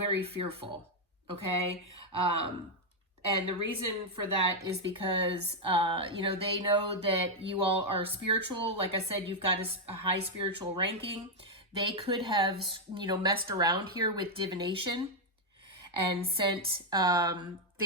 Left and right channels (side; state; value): both; normal; correlation 0.01